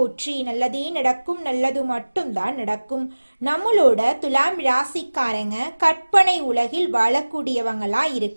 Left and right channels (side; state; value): both; inverted; correlation -1.00